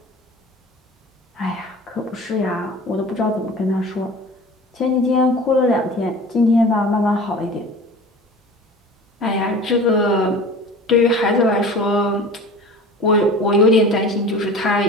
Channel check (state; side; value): normal; both; correlation 0.39